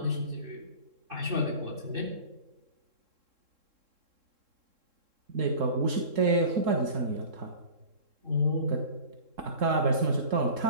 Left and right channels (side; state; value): left; late; 3.7 ms